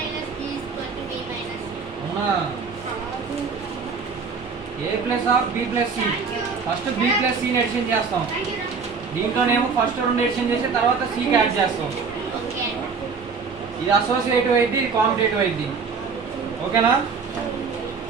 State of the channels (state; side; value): quieter; left; 5.2 dB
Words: B is equal to B minus C. అవునా? A plus of B plus C. First B plus సిని ఎడిషన్ చేస్తాం. దీంట్లోనేమో ఫస్ట్ రెండు ఎడిషన్ చేసి తర్వాత సికి యాడ్ చేస్తాం. Okay. ఇది అసోసియేటివ్ అయింది, ఇది కాంపిటేటివ్ అయింది. ఓకేనా?